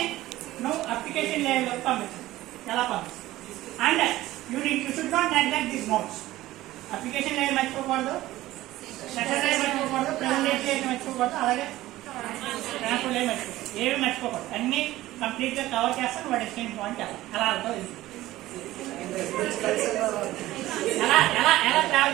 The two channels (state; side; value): quieter; left; 16.3 dB